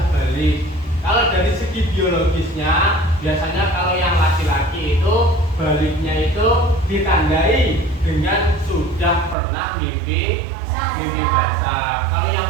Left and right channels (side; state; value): left; drops out; at 9.3 s